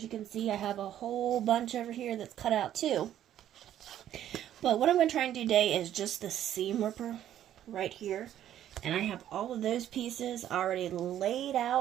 you can see, I have a whole bunch over here that's cut out too. But what I'm going to try and do today is just the seam ripper right here. And I have all of those pieces already laid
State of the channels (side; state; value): left; quieter; 11.4 dB